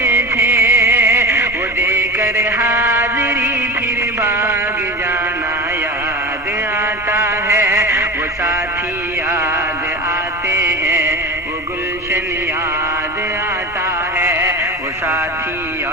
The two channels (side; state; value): both; normal; correlation 0.27